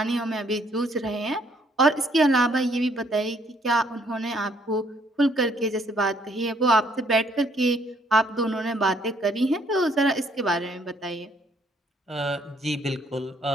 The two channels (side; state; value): both; normal; correlation 0.66